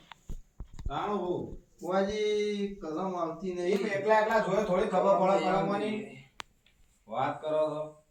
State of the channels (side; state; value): both; identical; correlation 1.00